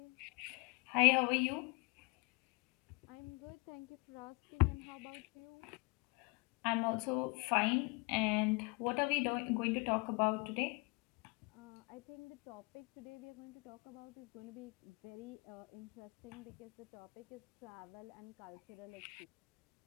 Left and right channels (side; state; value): right; quieter; 30.1 dB